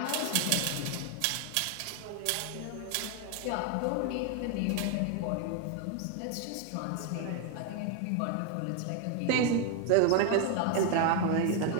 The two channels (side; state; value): both; different; correlation 0.01